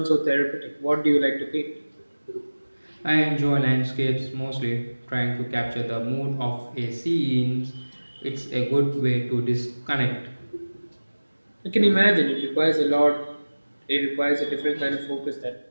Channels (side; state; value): both; inverted; correlation -1.00